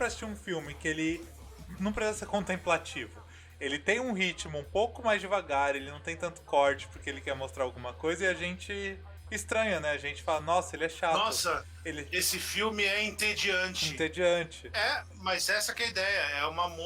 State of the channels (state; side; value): identical; both; correlation 1.00